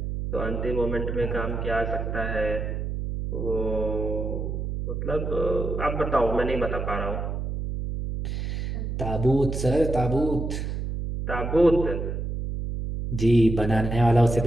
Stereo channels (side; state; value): right; noise; hum, 3 dB below the sound